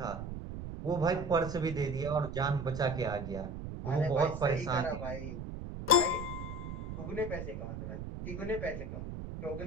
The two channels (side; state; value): right; noise; rumble, 7 dB below the sound